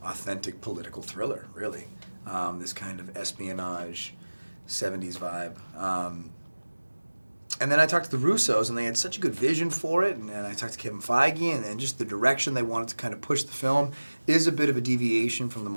authentic political thriller, really. This kind of espionage, 70s vibe. And then I talked to the Russos, and they had such a good vision for it, and I talked to Kevin Feige, and just the direction they wanted to kind of push the film is a bit of a deviation from the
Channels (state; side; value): inverted; both; correlation -1.00